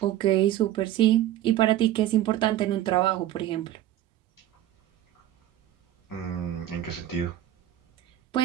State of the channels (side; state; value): left; quieter; 13.0 dB